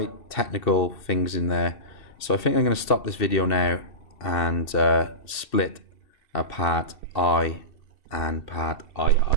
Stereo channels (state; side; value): late; right; 2.7 ms